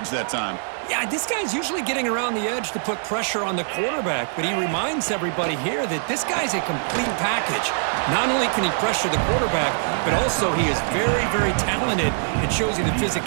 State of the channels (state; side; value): silent; left; digital silence